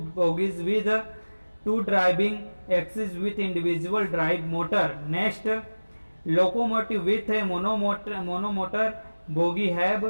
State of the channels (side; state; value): both; inverted; correlation -1.00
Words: bogies with two driving axes with individual drive motor। Next, locomotive with a monomotor bogie have